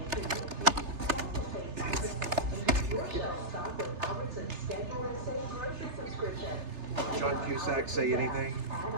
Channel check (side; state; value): left; late; 3.3 ms